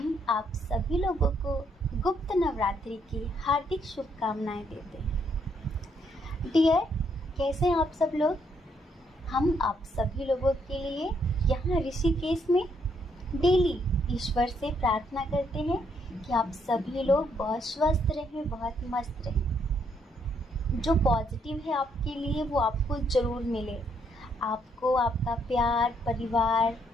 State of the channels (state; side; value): normal; both; correlation 0.72